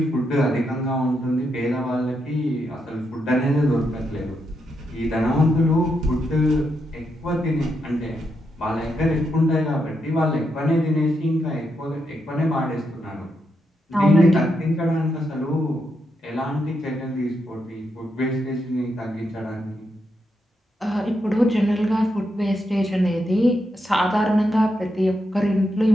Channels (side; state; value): both; normal; correlation 0.82